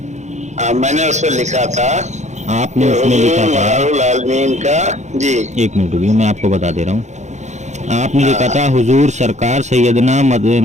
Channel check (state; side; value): late; left; 0.34 ms